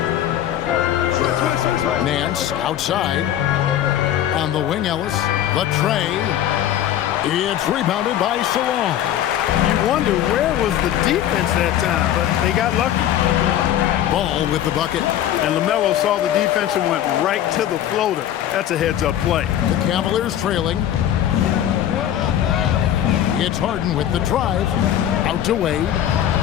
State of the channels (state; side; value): quieter; right; 11.3 dB